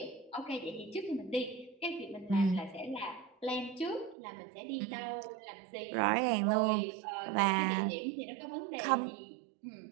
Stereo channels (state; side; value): drops out; left; at 4.2 s